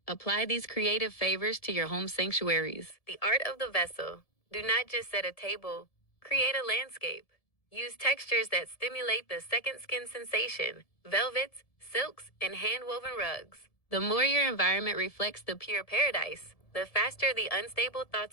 apply these creative favors to your home sanctuaries. The art of the vessel. Do not just set a table, create a landscape. Use textures that stimulate the second skin sensation, velvets, silks, and hand-woven rugs. The more your environment reflects the pure paradise, the faster the unstable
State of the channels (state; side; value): late; right; 1.7 ms